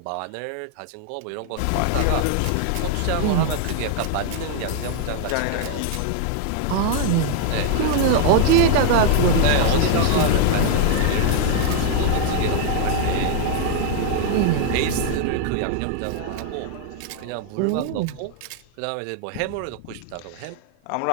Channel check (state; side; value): different; both; correlation 0.00